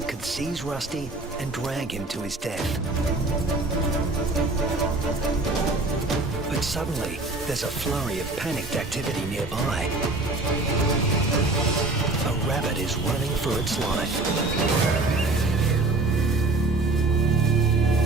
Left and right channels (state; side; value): quieter; left; 3.1 dB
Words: could seize Rusty and drag him to his death. But suddenly, there's a flurry of panicked activity nearby. A rabbit is running for its life.